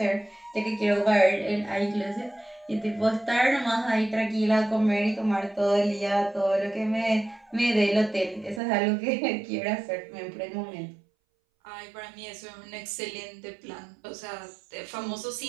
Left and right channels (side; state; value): left; drops out; at 8.6 s